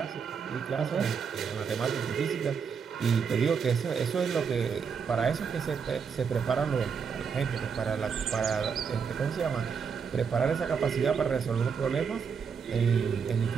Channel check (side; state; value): left; quieter; 6.3 dB